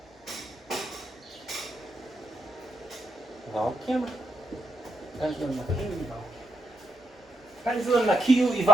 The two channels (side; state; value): both; normal; correlation 0.80